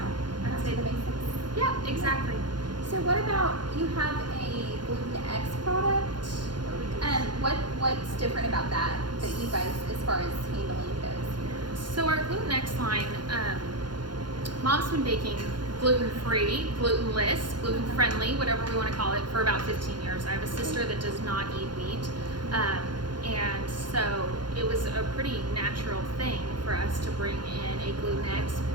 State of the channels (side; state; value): left; late; 0.71 ms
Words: that's To it. the basics. Yeah, exactly. So what about, you have a Gluten X product? What's different about that you guys, as far as handling goes here? So our Gluten X line, Mom's been baking gluten-free, glutenless, gluten-friendly, whatever we want to call it, for about 15 years. I have a sister that does not eat wheat. And so it was a pretty natural thing for us to bring in a Gluten X